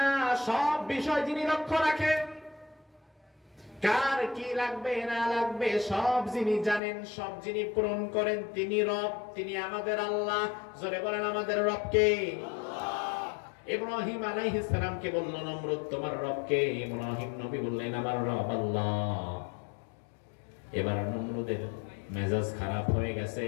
সব বিষয় যিনি লক্ষ্য রাখেন। কার কি লাগবে না লাগবে সব যিনি জানেন, সব যিনি পূরণ করেন, তিনি রব, তিনি আমাদের আল্লাহ। জোরে বলেন আমাদের রবকে। ইব্রাহিম আলাইহিস সালামকে বলল নমরুদ তোমার রবকে। ইব্রাহিম নবী বললেন আমার রব আল্লাহ। এবার নমরুদের মেজাজ খারাপ হয়ে গেছে।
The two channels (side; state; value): right; drops out; at 6.8 s